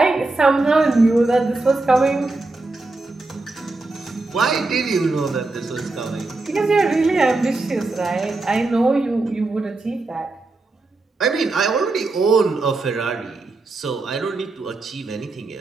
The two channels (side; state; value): left; quieter; 3.3 dB